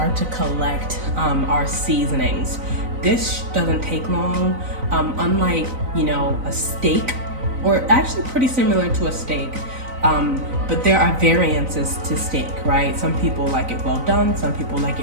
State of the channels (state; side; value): late; left; 3.9 ms